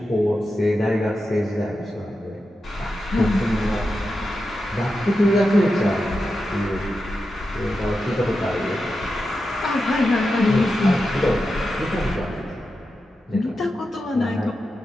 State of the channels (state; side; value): normal; both; correlation 0.89